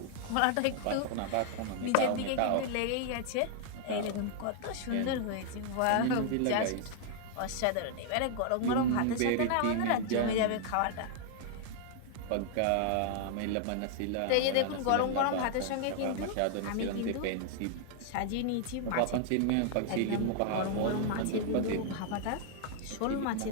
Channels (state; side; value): different; both; correlation -0.01